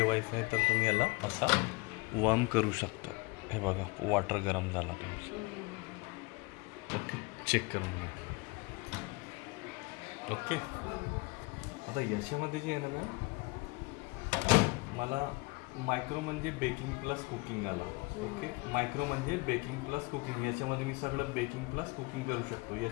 आहे, तर तुम्ही याला असा वार्म करू शकता. हे बघा, वॉटर गरम झाला तुमचं. ओके, चेक करून घ्या. ओके, आता याच्यामध्ये जे आहे ना मॅम, मला मायक्रो म्हणजे बेकिंग प्लस कुकिंग आला. ओके, मायक्रो म्हणजे बेकिंग प्लस कुकिंग. याच्यामध्ये मी सगळं बेकिंग प्लस कुकिंग करू शकतो.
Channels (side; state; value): right; quieter; 26.0 dB